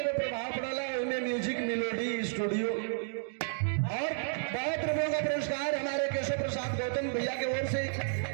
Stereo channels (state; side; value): silent; left; digital silence